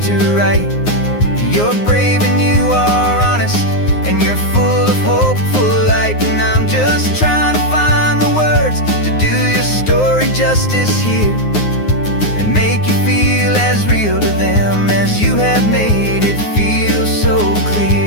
to write. You're brave and you are honest, and you're full of hopeful light. And I'm just trying to find the words to do your story justice here, and make you feel as real to them as you have made it feel so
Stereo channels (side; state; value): right; late; 9.6 ms